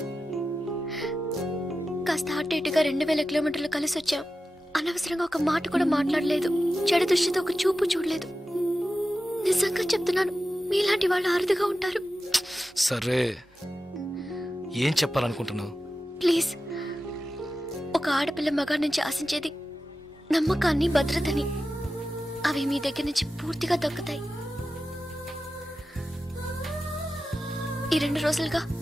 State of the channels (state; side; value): normal; both; correlation 0.93